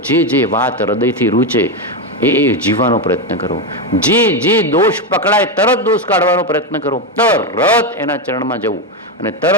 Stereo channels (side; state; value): both; normal; correlation 0.10